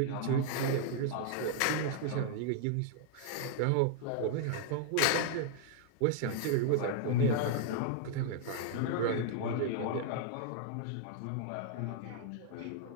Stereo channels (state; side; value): different; both; correlation -0.01